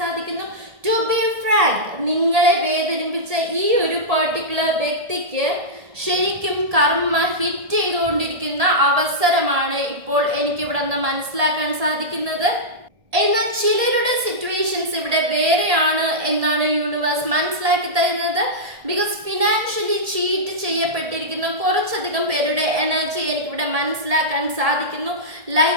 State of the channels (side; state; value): left; late; 1.7 ms